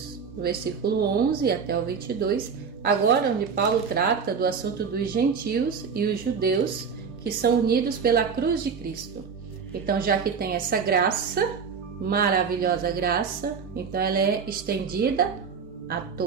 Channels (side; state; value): left; quieter; 6.0 dB